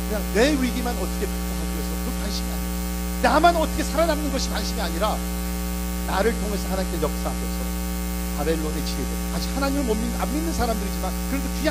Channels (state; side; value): identical; both; correlation 1.00